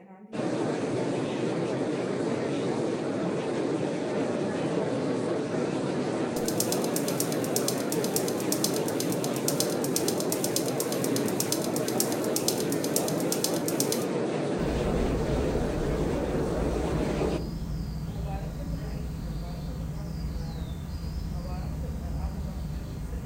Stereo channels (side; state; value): both; identical; correlation 1.00